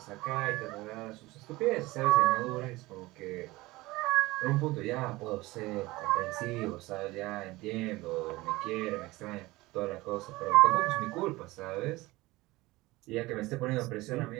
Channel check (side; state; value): left; quieter; 20.2 dB